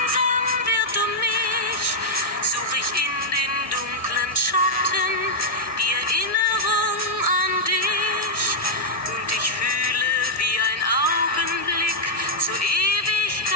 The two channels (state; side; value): normal; both; correlation -0.06